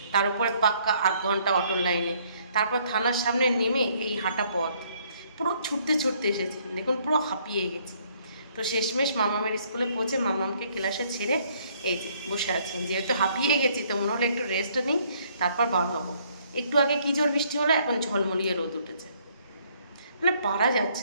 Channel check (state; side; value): inverted; both; correlation -0.65